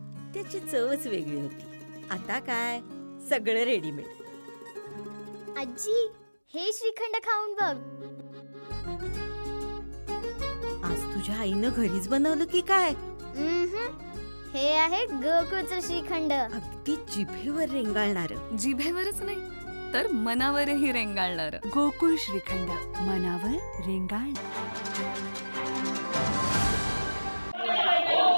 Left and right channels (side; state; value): both; inverted; correlation -1.00